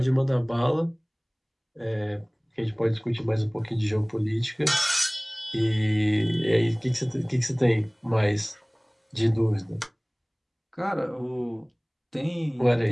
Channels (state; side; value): identical; both; correlation 1.00